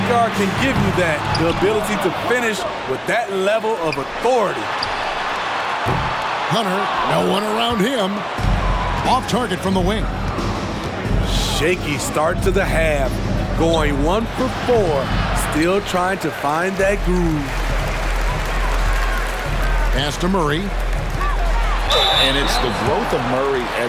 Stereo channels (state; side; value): identical; both; correlation 1.00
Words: guard can give you that, the ability to finish with that level of authority. Hunter, no one around him. Off target from the wing. Shaky start to the half. Going 1 for 4. Still trying to find that groove. Pass to Murray. And it's the growth of Murray